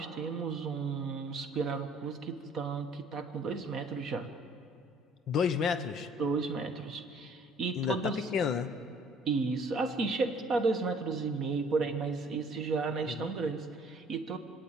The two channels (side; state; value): both; normal; correlation 0.56